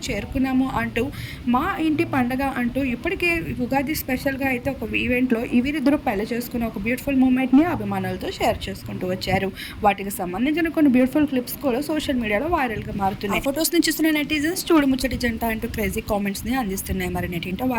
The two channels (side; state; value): both; identical; correlation 1.00